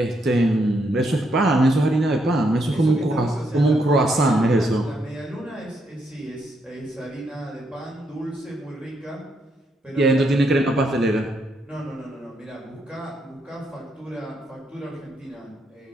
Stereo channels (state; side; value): normal; both; correlation 0.77